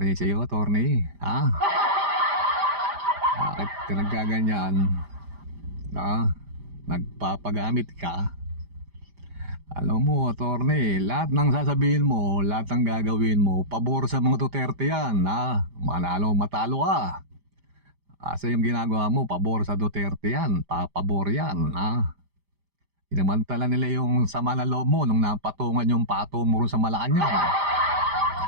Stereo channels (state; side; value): late; left; 5.0 ms